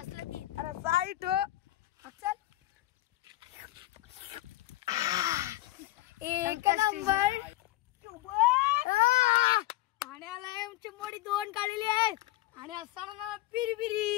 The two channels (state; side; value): quieter; right; 17.2 dB